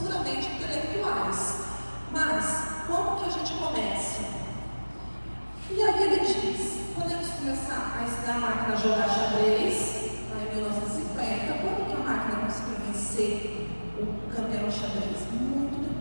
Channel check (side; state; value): both; inverted; correlation -1.00